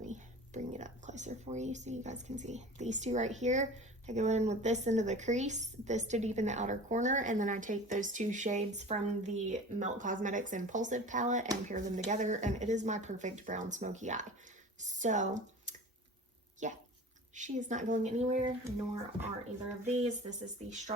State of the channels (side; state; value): both; normal; correlation 0.38